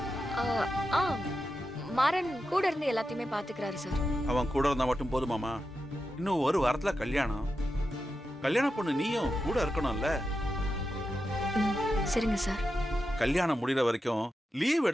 ஆ, ஆ மாறன் கூட இருந்து எல்லாத்தையுமே பாத்துக்கிறாரு சார். அவன் கூட இருந்தா மட்டும் போதுமாமா? இன்னும் ஒரு வாரத்துல கல்யாணம். கல்யாண பொண்ணு நீயும் கூட இருக்கணும்ல. சரிங்க சார். கல்யாணம் முடிகிற வரைக்கும் லீவ்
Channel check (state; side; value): normal; both; correlation 0.89